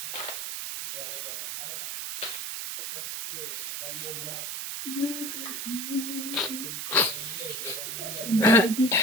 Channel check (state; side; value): noise; right; hiss, 4 dB below the sound